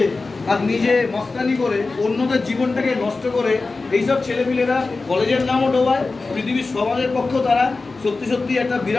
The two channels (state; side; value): quieter; right; 3.8 dB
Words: আর নিজে মস্তানি করে অন্যদের জীবনটাকে নষ্ট করে এইসব ছেলেপিলেরা কলেজের নামও ডোবায়, পৃথিবীর সমাজের পক্ষেও তারা সত্যি সত্যি একটা